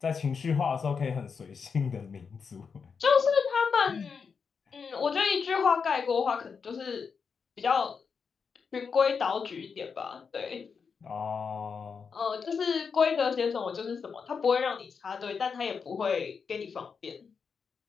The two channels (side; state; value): right; quieter; 5.8 dB